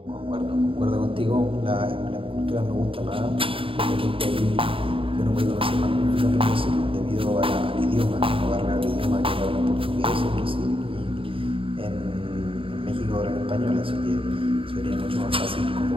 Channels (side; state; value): left; late; 0.26 ms